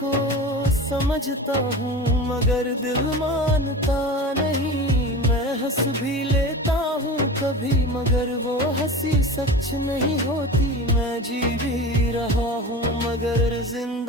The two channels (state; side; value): normal; both; correlation 0.32